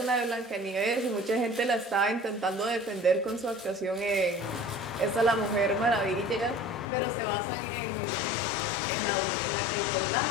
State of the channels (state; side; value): drops out; right; at 6.9 s